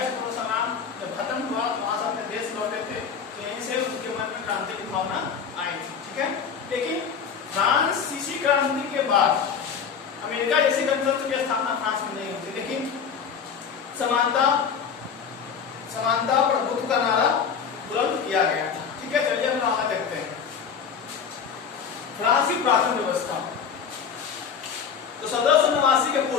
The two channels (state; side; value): quieter; right; 6.8 dB